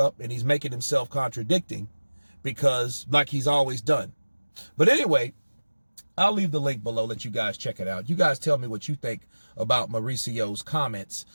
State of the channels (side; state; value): both; inverted; correlation -1.00